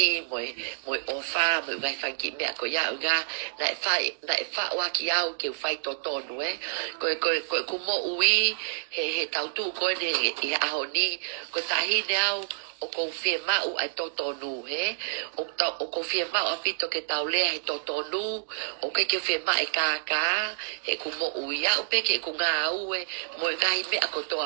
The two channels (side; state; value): left; silent; digital silence